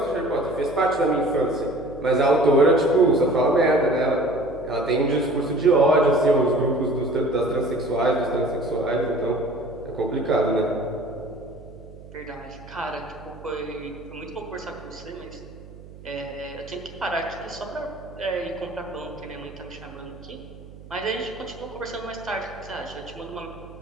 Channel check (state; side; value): noise; right; hum, 18 dB below the sound